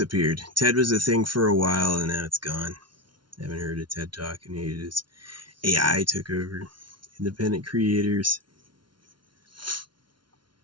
Ted was a thing for a while and now it's gone. I haven't heard a TED Talk in ages. AI took over. Independent creators.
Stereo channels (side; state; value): left; late; 0.72 ms